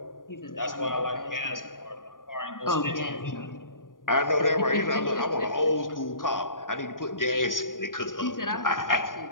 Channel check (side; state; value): right; late; 0.90 ms